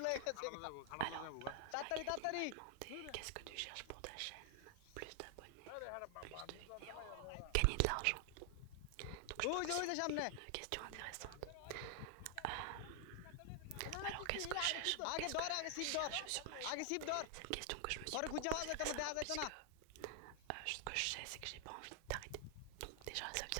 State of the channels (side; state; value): both; different; correlation 0.00